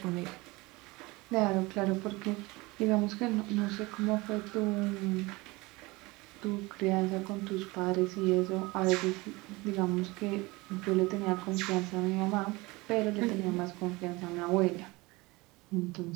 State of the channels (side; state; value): left; quieter; 23.0 dB